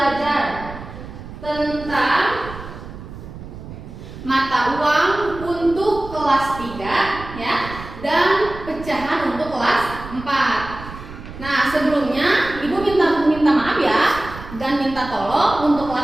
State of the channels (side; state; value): right; noise; rumble, 13 dB below the sound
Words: tentang mata uang untuk kelas 3 ya, dan pecahan untuk kelas 4. Nah, sebelumnya Ibu minta maaf ya dan minta tolong untuk